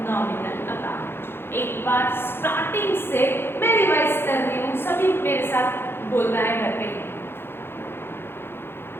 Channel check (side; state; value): right; late; 0.11 ms